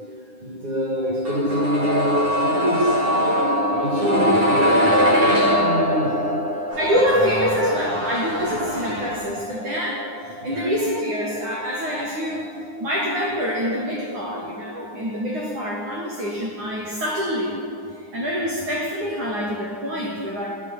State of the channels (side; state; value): left; late; 9.7 ms